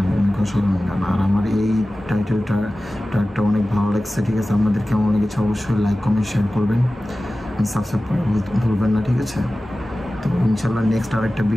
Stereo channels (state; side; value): normal; both; correlation 0.96